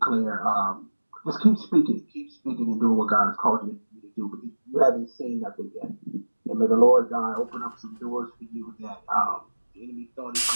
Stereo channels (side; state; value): both; inverted; correlation -1.00